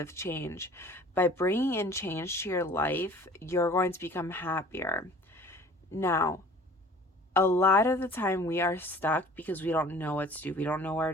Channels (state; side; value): normal; both; correlation 0.48